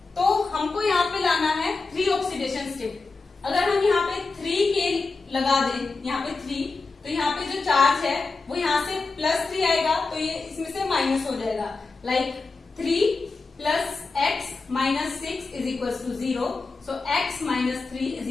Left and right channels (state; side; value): quieter; right; 4.0 dB